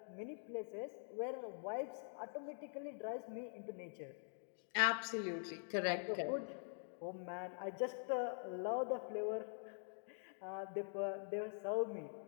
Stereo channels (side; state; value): right; silent; digital silence